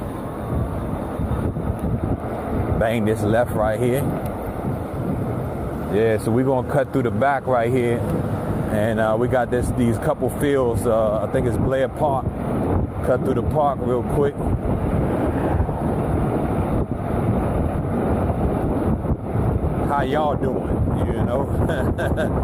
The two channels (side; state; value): both; identical; correlation 1.00